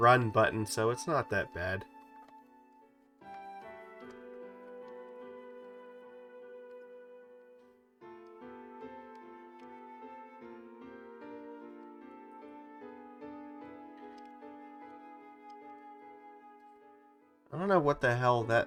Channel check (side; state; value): both; identical; correlation 1.00